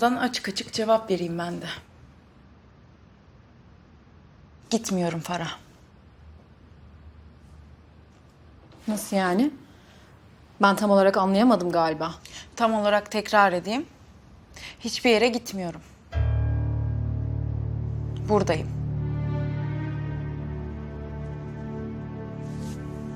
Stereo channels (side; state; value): both; identical; correlation 1.00